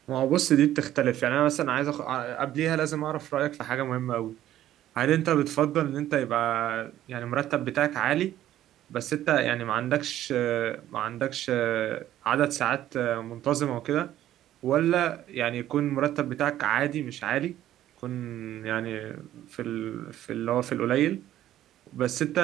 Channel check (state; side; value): quieter; left; 12.8 dB